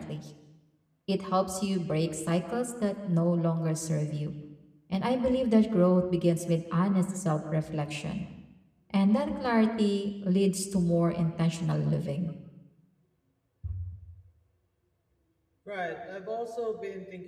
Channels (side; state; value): both; identical; correlation 1.00